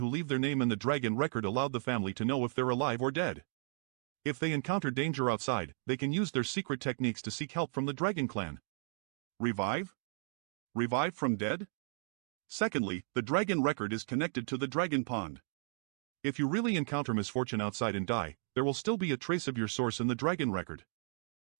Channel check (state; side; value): silent; left; 55 dB below the other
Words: leave their name in the dragon record allowed the family to know if they're alive or dead. If they encounter danger outside, they can use their secret techniques to seek help from the dragon clan. Revive? Revive from dead? Secondly, the dragon record is connected to the dragon pond. If you really encounter misfortune outside and die, there will still be a trace of your source in the dragon record.